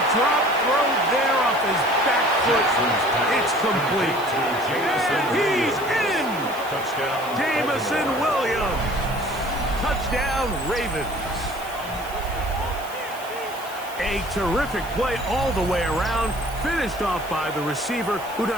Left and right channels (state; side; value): noise; right; hiss, 17 dB below the sound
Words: throw there off his back foot. It's complete. He's in. Touchdown. Jameson Williams. Touchdown, Ravens. A terrific play all the way around, finished off by the receiver, who